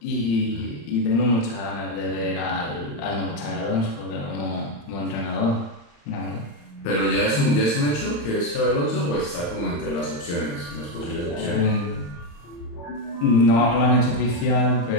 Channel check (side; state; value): right; late; 35 ms